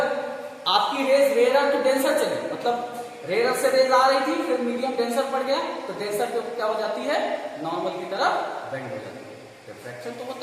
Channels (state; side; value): identical; both; correlation 1.00